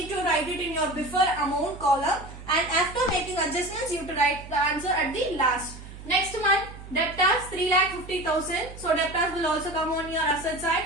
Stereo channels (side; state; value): right; noise; hum, 14 dB below the sound